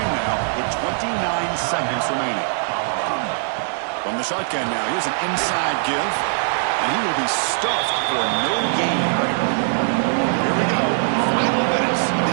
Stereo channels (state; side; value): silent; left; 65 dB below the other